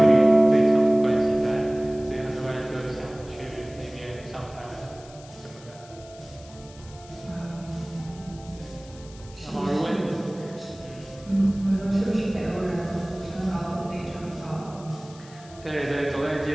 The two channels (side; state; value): left; noise; hiss, 22 dB below the sound